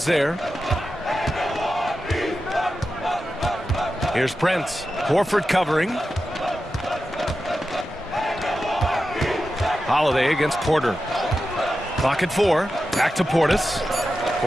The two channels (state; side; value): normal; both; correlation 0.91